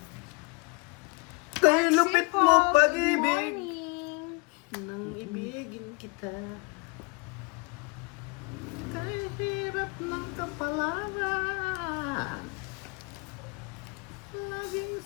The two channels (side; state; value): right; quieter; 31.4 dB